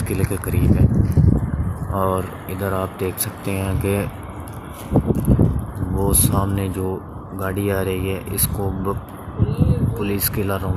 किले के करीब है। और इधर आप देख सकते हैं कि वो सामने जो गाड़ी आ रही है इसको पुलिस किला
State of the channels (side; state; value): both; identical; correlation 1.00